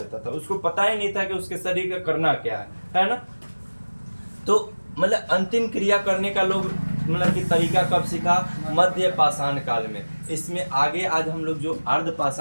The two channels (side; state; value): both; inverted; correlation -1.00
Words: था, उसको पता ही नहीं था कि उसके शरीर का करना क्या है ना। तो मतलब अंतिम क्रिया करने का लोग मतलब कि तरीका कब सीखा, मध्य पाषाण काल में। इसमें आगे आज हम लोग जो अर्ध